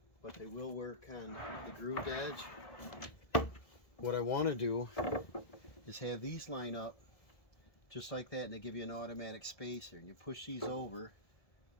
but they will work on the grooved edge. What I want to do is have these line up just like that, and they give you an automatic spacer, and you push these over.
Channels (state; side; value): late; right; 1.7 ms